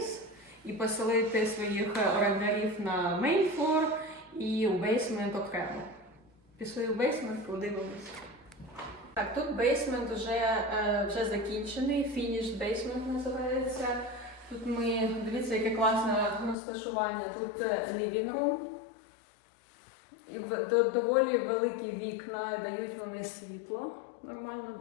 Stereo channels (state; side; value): drops out; right; at 16.6 s